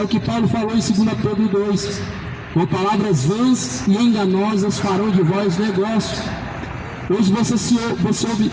o que Paulo falou em 2 Pedro 2, com palavras vãs e enganosas farão de vós negócio. Hoje você ouve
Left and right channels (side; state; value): both; identical; correlation 1.00